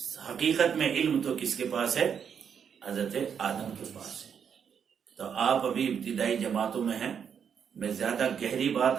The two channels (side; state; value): left; quieter; 7.5 dB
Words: حقیقت میں علم تو کس کے پاس ہے؟ حضرت آدم کے پاس ہے۔ تو آپ ابھی ابتدائی جماعتوں میں ہیں، میں زیادہ گہری بات